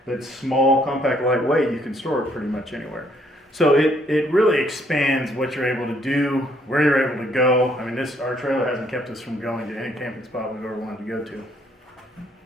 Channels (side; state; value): both; normal; correlation 0.67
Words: that's small, compact, lightweight, you can store it pretty much anywhere. So it really expands what you're able to do, where you're able to go. I mean, our trailer hasn't kept us from going to any camping spot we've ever wanted to go to.